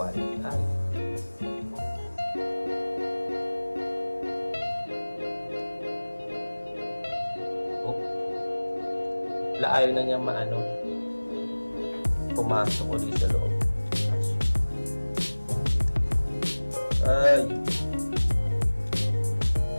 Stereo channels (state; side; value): inverted; both; correlation -1.00